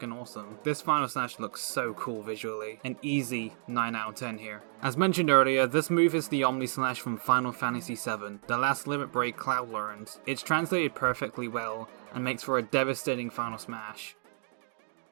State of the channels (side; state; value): left; silent; digital silence